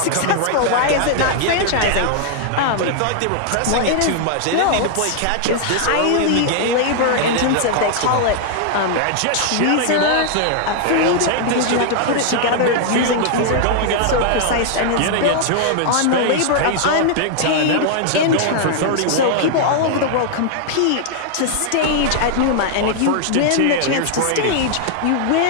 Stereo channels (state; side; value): different; both; correlation -0.01